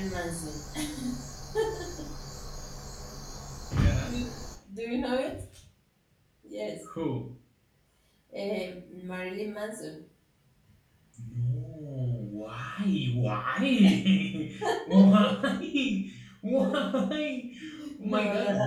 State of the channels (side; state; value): both; identical; correlation 1.00